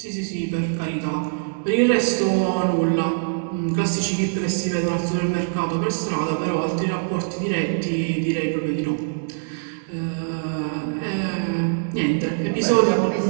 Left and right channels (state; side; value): silent; left; digital silence